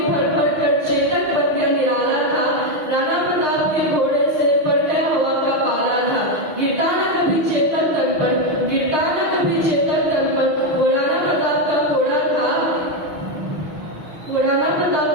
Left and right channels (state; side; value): late; left; 6.3 ms